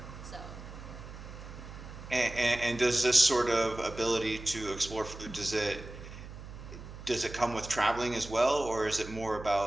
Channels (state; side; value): noise; right; hum, 13 dB below the sound